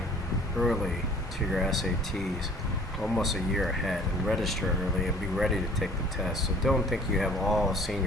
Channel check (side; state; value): both; normal; correlation 0.51